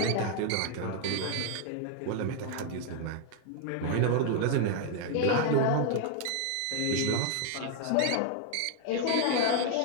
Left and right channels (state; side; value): different; both; correlation 0.00